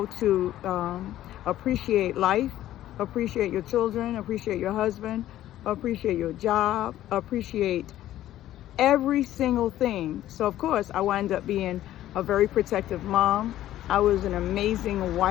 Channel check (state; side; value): quieter; right; 13.4 dB